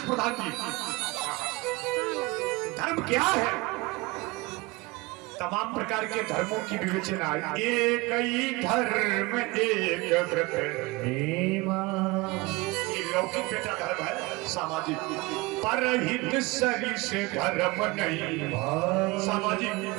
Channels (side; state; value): left; quieter; 23.6 dB